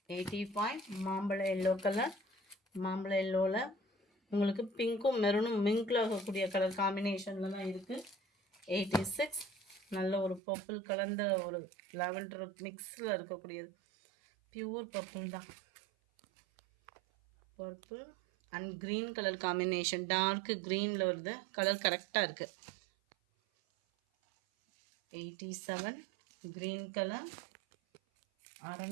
85 மாம்பழ எல்லோ கலர். மாம்பழ எல்லோவில் உங்களுக்கு பிங்க்கும் மெரூனும் மிங்கில் ஆகக்கூடிய கலர் காம்பினேஷனில் தான் இருக்குது. 86 நல்ல ஒரு பர்பிள் கலந்த ஒரு லாவெண்டர் மிக்ஸில் இருக்கக்கூடியது. பியூர் பர்பிள் தான். Purple and green colour combination, dark க்ரீனில் வருது. கலர் கரெக்டாக இருக்குது. 87 க்ரீன் கலர்.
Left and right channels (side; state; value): left; drops out; at 10.4 s